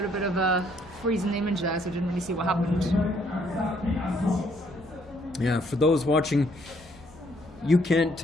bit of a freezing image there, so I didn't really see what happened. Yeah, for those watching, you can't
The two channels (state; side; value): normal; both; correlation 0.67